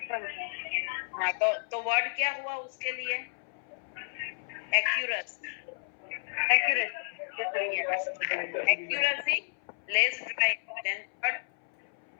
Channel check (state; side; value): silent; right; 57 dB below the other